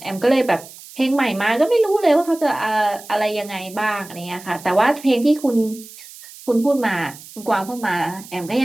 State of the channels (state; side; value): noise; right; hiss, 18 dB below the sound